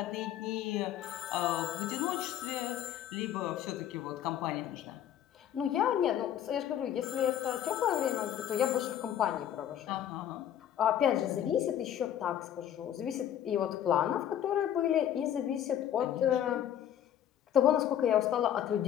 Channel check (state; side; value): quieter; right; 10.6 dB